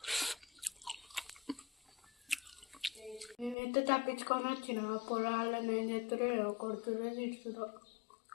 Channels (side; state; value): right; drops out; at 3.6 s